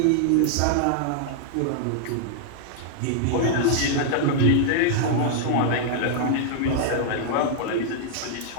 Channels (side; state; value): both; different; correlation -0.01